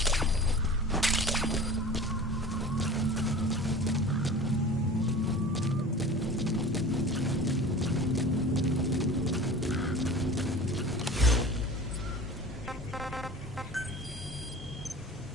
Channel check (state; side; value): normal; both; correlation 0.38